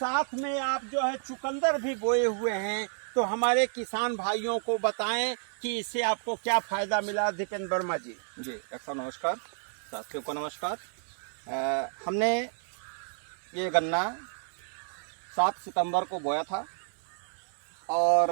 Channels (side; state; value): left; silent; digital silence